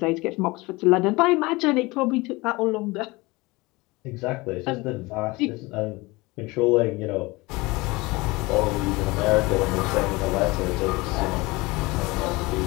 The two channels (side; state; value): right; quieter; 23.0 dB